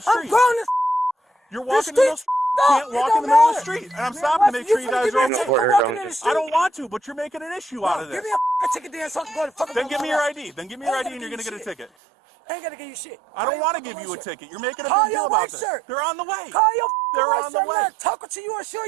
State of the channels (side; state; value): left; drops out; at 11.9 s